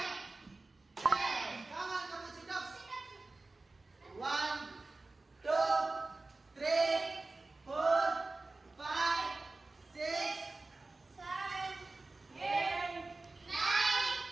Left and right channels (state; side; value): quieter; left; 3.3 dB